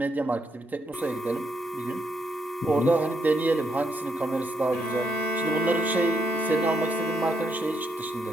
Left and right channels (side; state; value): both; normal; correlation 0.78